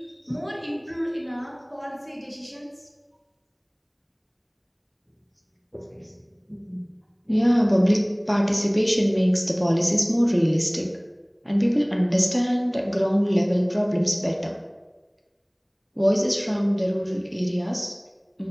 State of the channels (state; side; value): identical; both; correlation 1.00